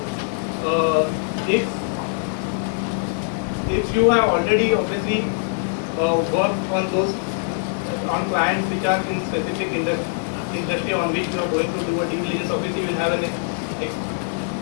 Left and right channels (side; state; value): right; silent; digital silence